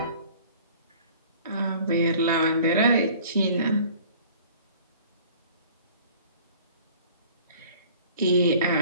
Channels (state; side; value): inverted; both; correlation -0.50